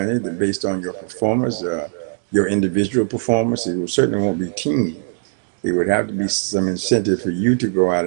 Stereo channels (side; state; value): left; silent; digital silence